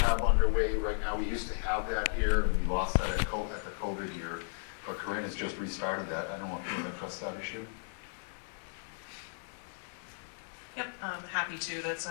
underway right now. We used to have that here. We lost that at the COVID year, but Corinne has just restarted that. I don't want people to press that issue. Yep, I'm happy to. That's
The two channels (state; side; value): silent; right; 55 dB below the other